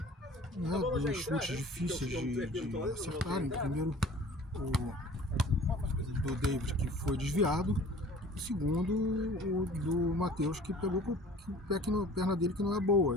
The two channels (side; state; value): both; normal; correlation 0.47